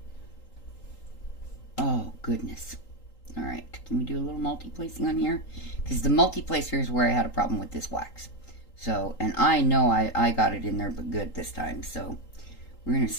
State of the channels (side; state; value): right; late; 3.8 ms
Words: Oh, goodness. Alright, can we do a little multi-placing on here? Because the multi-placer is where I had a problem with this wax. So, and I know I got it in there but good this time. So, we're going to